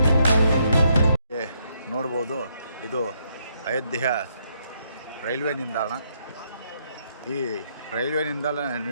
ನೋಡ್ಬೋದು, ಇದು ಅಯೋಧ್ಯೆಯ ರೈಲ್ವೆ ನಿಲ್ದಾಣ. ಈ ರೈಲ್ವೆ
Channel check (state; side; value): inverted; both; correlation -0.74